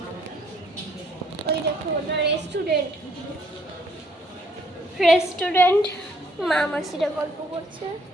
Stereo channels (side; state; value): both; normal; correlation 0.65